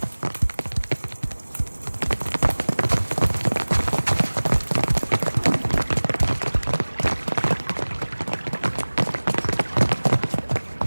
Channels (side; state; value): both; inverted; correlation -1.00